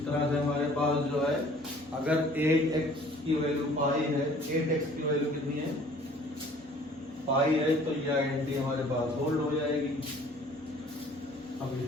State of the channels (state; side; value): normal; both; correlation 0.53